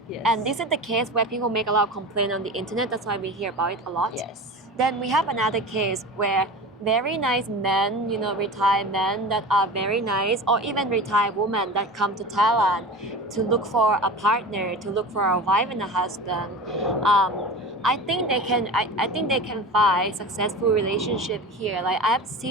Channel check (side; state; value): both; normal; correlation 0.33